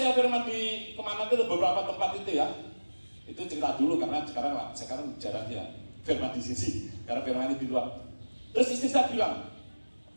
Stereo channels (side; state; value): both; inverted; correlation -1.00